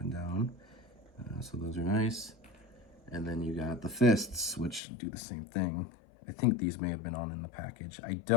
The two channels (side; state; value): right; drops out; at 4.8 s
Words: and down. So those are nice. And then you got the fists, which do the same thing. I think these may have been on in the package. I